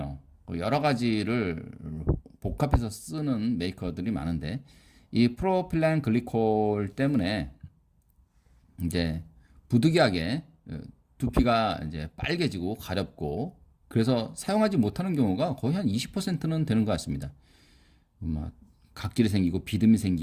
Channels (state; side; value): identical; both; correlation 1.00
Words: 여러 가지를 복합해서 쓰는 메이커들이 많은데 이 프로필렌 글리콜 때문에 이제 부득이하게 두피가 이제 빨개지고 가렵고 그래서 사용하지 못하는 경우가 거의 한 20%는 되는 것 같습니다. 막 각질이 생기고 비듬이